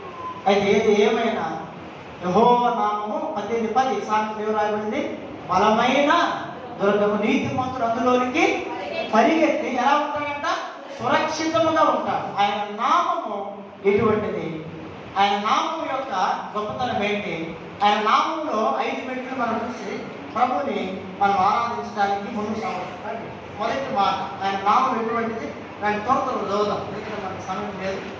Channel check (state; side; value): identical; both; correlation 1.00